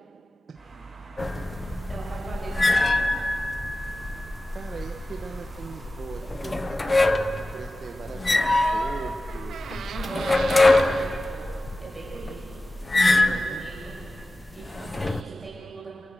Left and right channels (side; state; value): both; normal; correlation 0.95